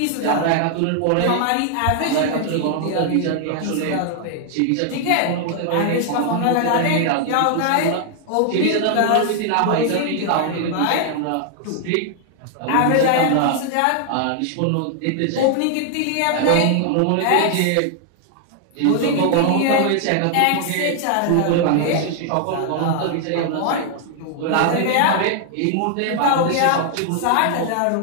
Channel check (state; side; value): different; both; correlation 0.00